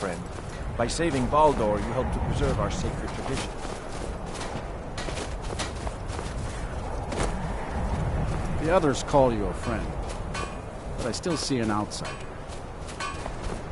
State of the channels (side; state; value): both; identical; correlation 1.00